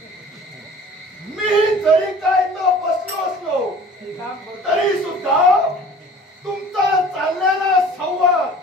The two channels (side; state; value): both; normal; correlation 0.46